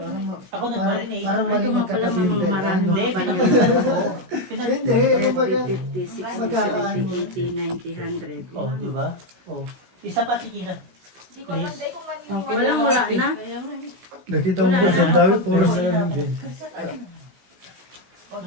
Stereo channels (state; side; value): late; left; 16 ms